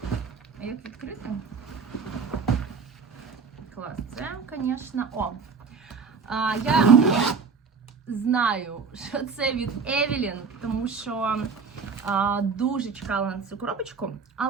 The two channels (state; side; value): quieter; left; 5.4 dB